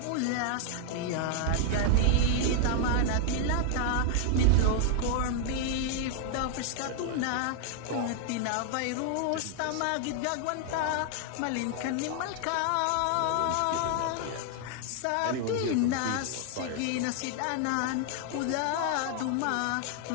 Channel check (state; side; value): different; both; correlation 0.00